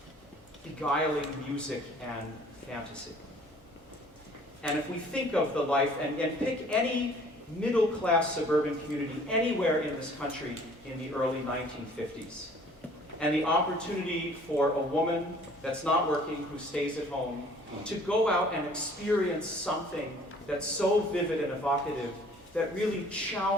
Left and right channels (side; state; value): both; normal; correlation 0.54